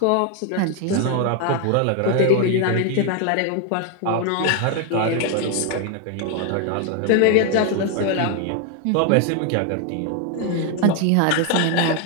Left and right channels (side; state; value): both; different; correlation 0.01